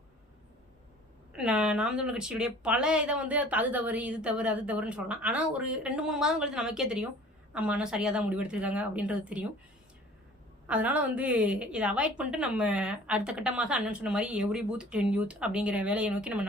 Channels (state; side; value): normal; both; correlation 0.48